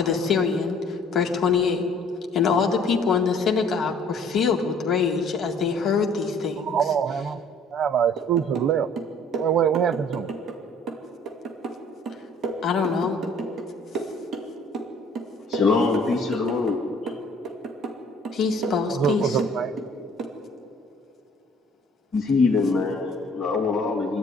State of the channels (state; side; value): normal; both; correlation 0.55